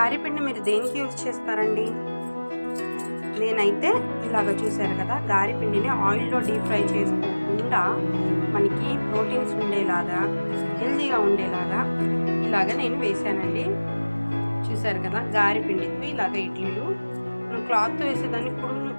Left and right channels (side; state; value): both; inverted; correlation -1.00